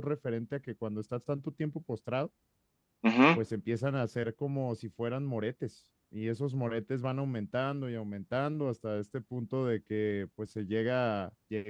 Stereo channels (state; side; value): identical; both; correlation 1.00